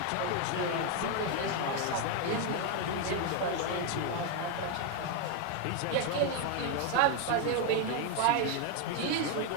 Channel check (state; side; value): different; both; correlation 0.01